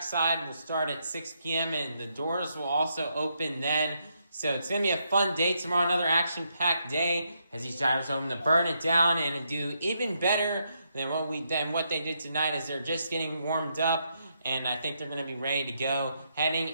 will start at 6 p.m. and the doors will also open then. So it's going to be a fun day tomorrow, another action-packed day, as these drivers are hoping to burn it down and do even better than what they did tonight, as they're just getting warmed up. And I think they're going to be ready to go heading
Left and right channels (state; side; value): inverted; both; correlation -0.79